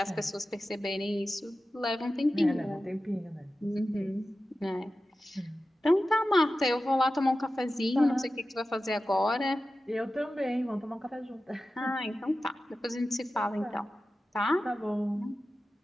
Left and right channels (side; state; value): both; normal; correlation 0.94